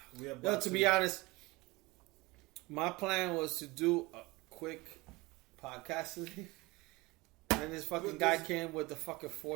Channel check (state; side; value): quieter; left; 22.7 dB